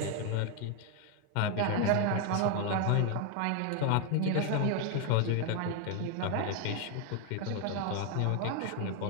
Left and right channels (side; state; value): both; different; correlation 0.01